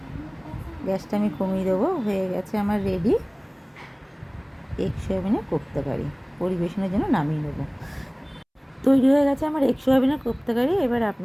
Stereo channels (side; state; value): both; identical; correlation 1.00